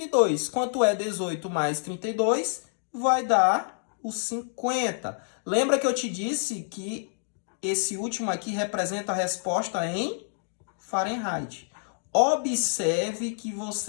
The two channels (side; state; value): right; silent; digital silence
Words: Quanto é 18 mais 32? Vai dar o 50. Lembra que eu te disse que esse último aqui representa a resposta em Fahrenheit. Observe que